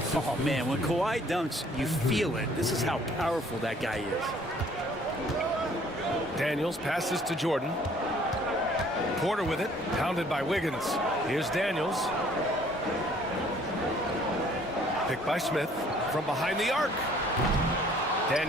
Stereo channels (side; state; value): both; normal; correlation 0.58